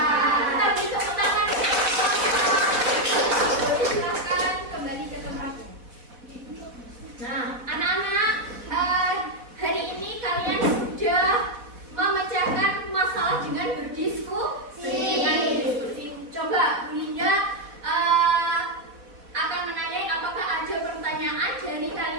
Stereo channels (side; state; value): left; late; 4.1 ms